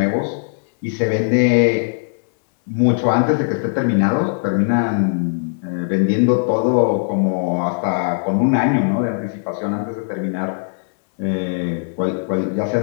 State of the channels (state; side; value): silent; right; 66 dB below the other